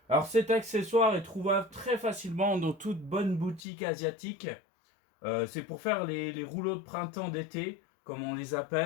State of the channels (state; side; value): drops out; right; at 3.6 s